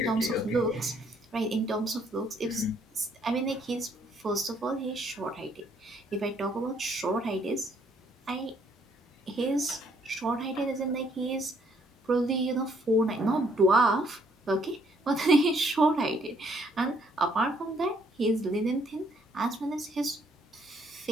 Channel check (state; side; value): normal; both; correlation 0.67